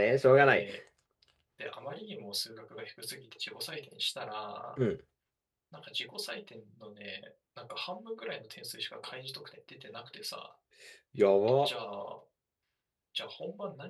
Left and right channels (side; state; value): both; identical; correlation 1.00